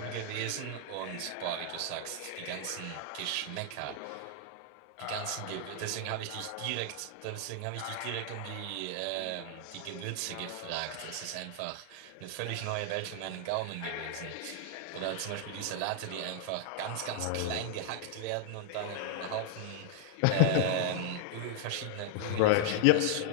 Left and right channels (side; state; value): both; different; correlation 0.00